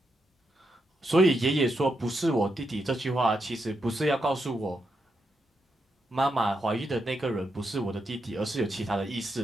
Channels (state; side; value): normal; both; correlation 0.83